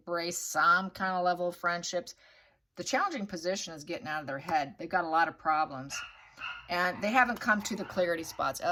some kind of level of friendships. The challenging position is getting out of their head. They've got a lot of problems. And they haven't come to the clarity spots.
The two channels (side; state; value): both; identical; correlation 1.00